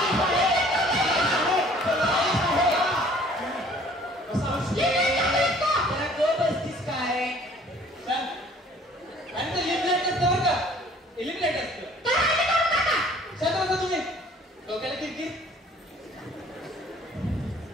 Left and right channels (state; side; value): normal; both; correlation 0.54